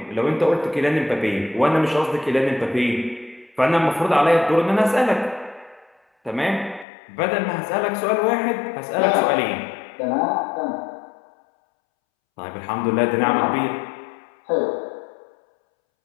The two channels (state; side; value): drops out; right; at 6.9 s